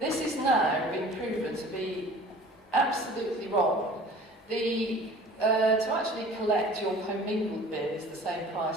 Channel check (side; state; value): both; normal; correlation 0.46